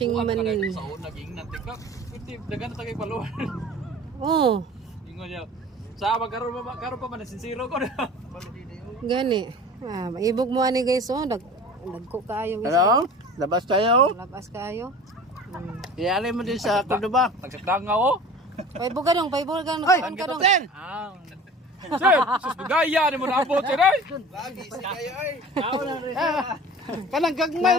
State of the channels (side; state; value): both; normal; correlation 0.41